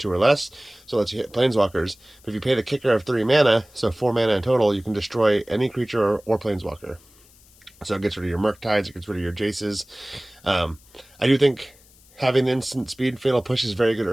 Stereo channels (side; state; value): left; noise; hiss, 27 dB below the sound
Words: or less. So let's hit planeswalkers. But if you pay the kicker of 3 mana, so 4 mana in total, you can destroy any creature or planeswalker. So it gets rid of your Murktides, it gets rid of your Jaces. I do think having the instant speed Fatal Push is very good